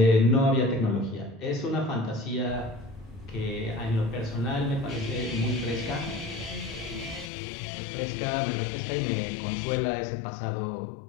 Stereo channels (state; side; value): drops out; right; at 7.3 s